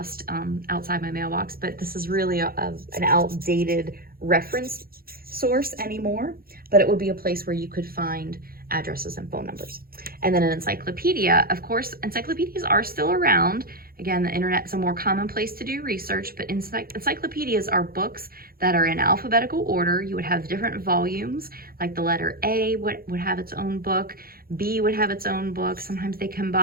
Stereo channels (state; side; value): late; left; 0.43 ms